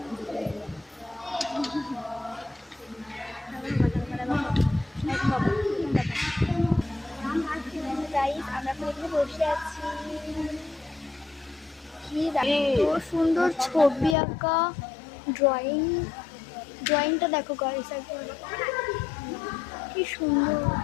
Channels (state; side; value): drops out; right; at 14.2 s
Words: এখানে বসে আছি। কি এত সুন্দর ছবি আঁকা, ড্রয়িংটা দেখো গাইস, কি সুন্দর।